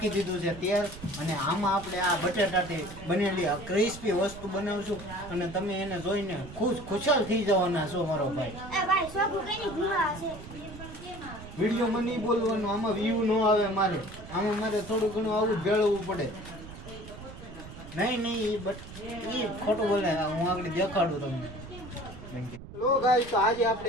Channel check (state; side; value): noise; right; rumble, 14 dB below the sound